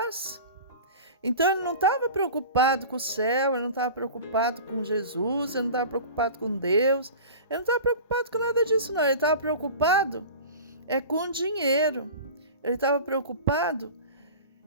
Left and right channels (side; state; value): both; inverted; correlation -0.36